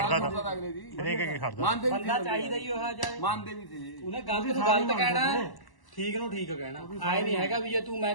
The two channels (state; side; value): late; right; 1.1 ms